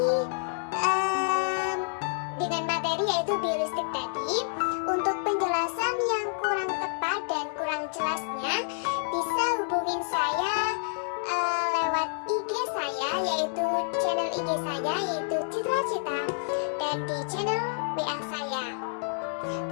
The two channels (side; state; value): right; silent; digital silence